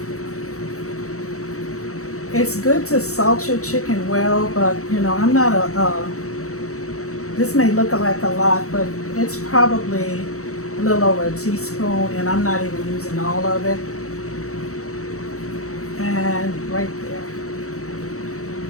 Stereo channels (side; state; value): right; late; 0.65 ms